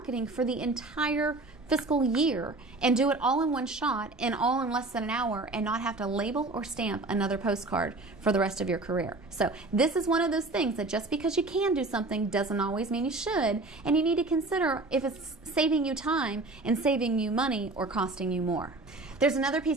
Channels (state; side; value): quieter; left; 3.1 dB